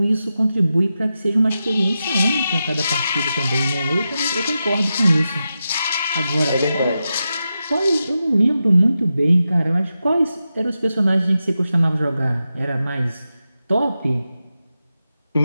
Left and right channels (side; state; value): both; inverted; correlation -0.90